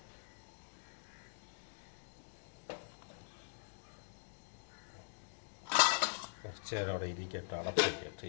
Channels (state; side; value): silent; right; digital silence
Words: കുറച്ച് നേരം അവിടെ ഇരിക്കട്ടെ, അടച്ച് വയ്ക്കട്ടെ.